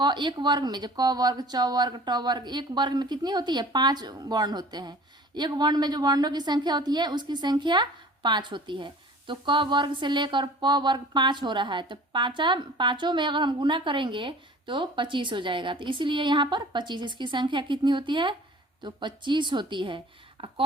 एक वर्ग में, जो क वर्ग, च वर्ग, ट वर्ग, एक वर्ग में कितनी होती है, 5 वर्ण होते हैं। एक वर्ण में जो वर्णों की संख्या होती है उसकी संख्या 5 होती है। तो क वर्ग से लेकर प वर्ग 5 हो रहा है, तो पांचों में अगर हम गुना करेंगे तो 25 हो जाएगा। तो इसीलिए यहाँ पर 25, इसकी संख्या कितनी होती है, तो 25 होती है।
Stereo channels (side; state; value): both; normal; correlation 0.46